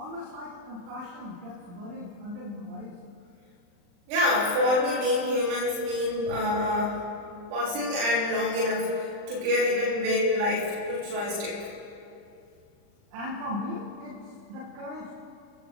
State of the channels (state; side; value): late; left; 39 ms